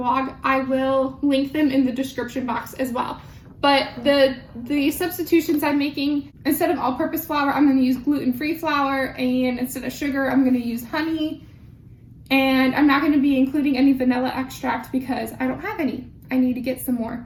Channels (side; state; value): both; identical; correlation 1.00